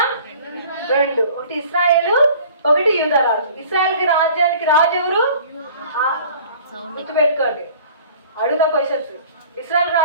2. ఒకటి ఇశ్రాయేలు, ఒకటి యూదా రాజు. ఇశ్రాయేల్కి రాజ్యానికి రాజు ఎవరు? గుర్తుపెట్టుకోండి, అడుగుతా క్వశ్చన్స్. ఇశ్రాయేల్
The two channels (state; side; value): inverted; both; correlation -0.48